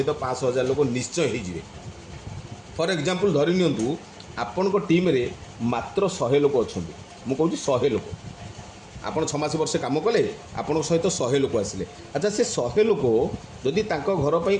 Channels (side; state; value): both; identical; correlation 1.00